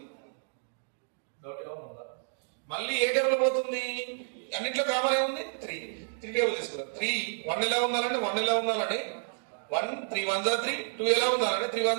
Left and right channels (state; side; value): silent; left; digital silence